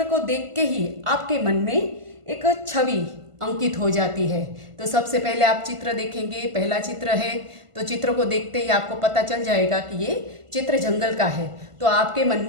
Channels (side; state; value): left; late; 1.5 ms